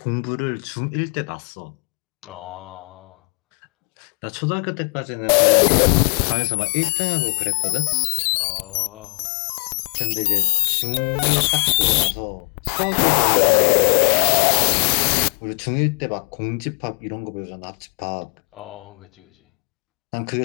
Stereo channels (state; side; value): quieter; right; 37.0 dB